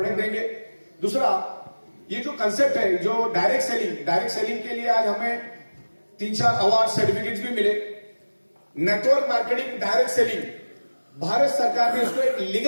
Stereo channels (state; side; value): inverted; both; correlation -1.00